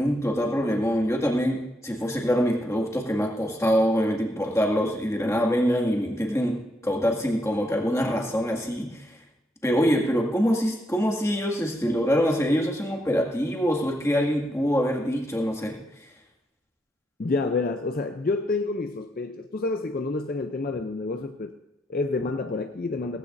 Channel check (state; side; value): normal; both; correlation 0.78